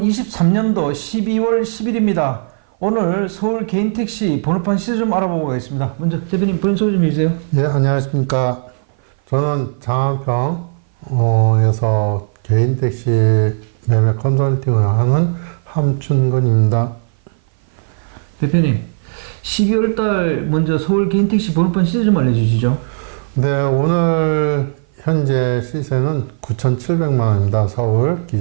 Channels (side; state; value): left; silent; 57 dB below the other